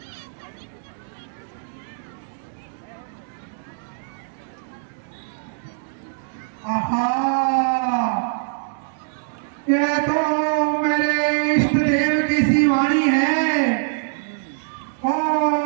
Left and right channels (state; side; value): silent; left; digital silence